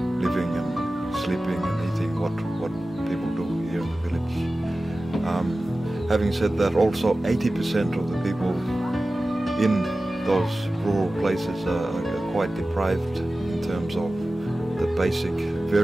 living and sleeping and eating what people do here in the village. Having said that, also 80% of the people in those rural places are quite deprived in terms of the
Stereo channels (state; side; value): normal; both; correlation 0.96